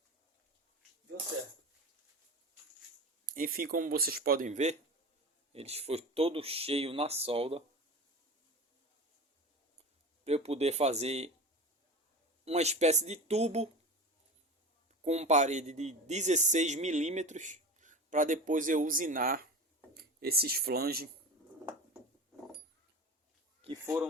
deu certo. Enfim, como vocês podem ver, eles foi todo cheio na solda, para eu poder fazer uma espécie de tubo com parede de 16 milímetros, para depois eu usinar esses flanges que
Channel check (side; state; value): both; normal; correlation 0.30